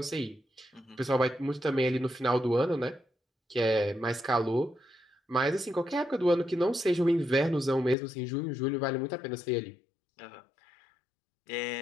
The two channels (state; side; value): drops out; right; at 8.0 s